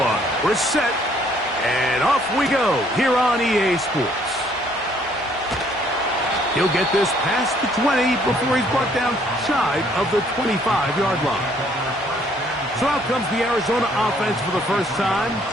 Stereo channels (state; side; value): normal; both; correlation 0.64